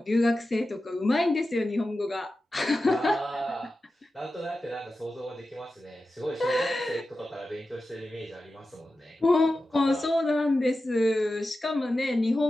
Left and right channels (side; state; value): both; normal; correlation 0.93